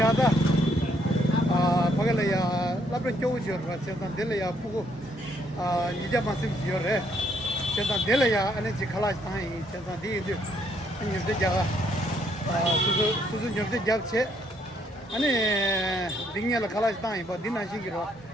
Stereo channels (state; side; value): normal; both; correlation 0.70